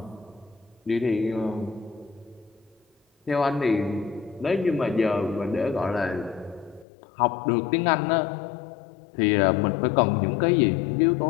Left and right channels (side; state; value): right; drops out; at 6.9 s